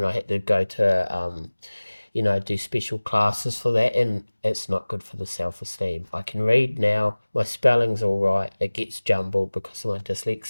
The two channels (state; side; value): inverted; both; correlation -1.00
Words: I had to go to do special classes for that, and it's not good for the self-esteem. I can read now, my spelling's all right, it gets jumbled because of my